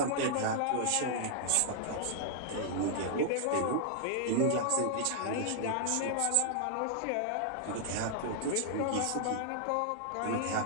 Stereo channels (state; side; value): different; both; correlation -0.01